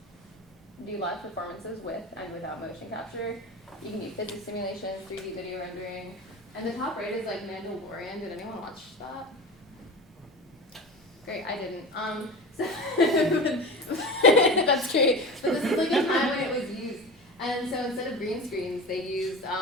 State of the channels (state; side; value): normal; both; correlation 0.30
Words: do live performances with and without motion capture. You can do physics simulations, 3D video rendering. And the top right is like Mandalorian. Did anyone watch that? Great, I didn't. So that's great. But this is like a time when it was used. And so instead of green screens, they used